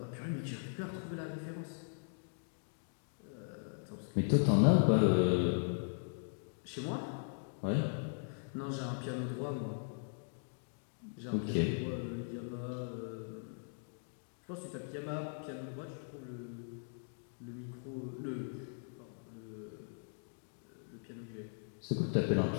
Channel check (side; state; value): right; silent; digital silence